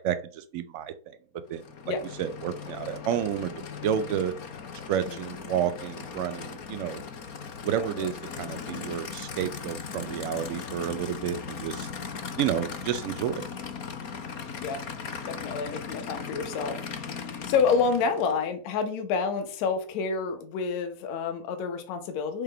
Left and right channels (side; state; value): right; late; 4.3 ms